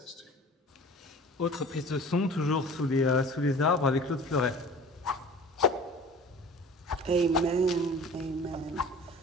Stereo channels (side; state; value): both; normal; correlation 0.42